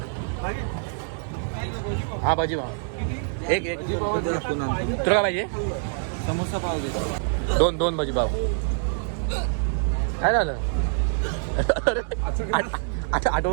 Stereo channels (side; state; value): left; silent; digital silence